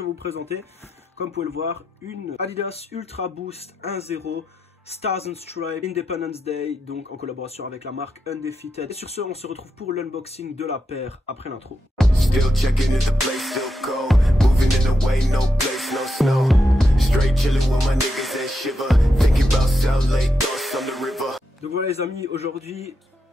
vous présenter, comme vous pouvez le voir, une Adidas Ultra Boost 1.0 Stars and Stripes Independence Day, donc en collaboration avec la marque Undefeated. Et sur ce on se retrouve pour l'unboxing de la paire après l'intro. Donc voilà les amis, aujourd'hui,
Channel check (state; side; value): normal; both; correlation 0.85